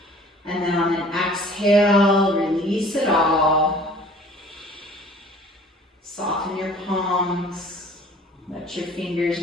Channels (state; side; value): normal; both; correlation 0.50